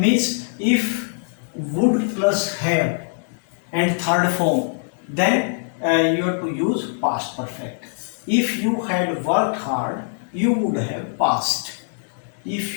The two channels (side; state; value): right; silent; digital silence